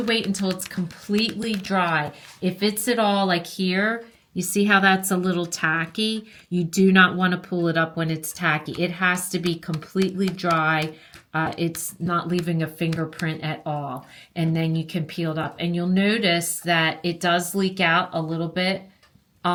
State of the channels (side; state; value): both; identical; correlation 1.00